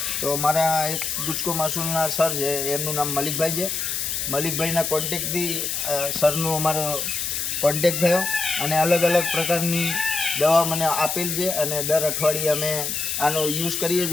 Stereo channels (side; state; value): left; noise; hiss, 2 dB below the sound